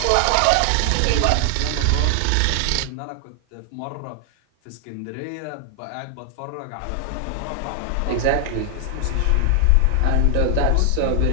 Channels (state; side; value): different; both; correlation 0.00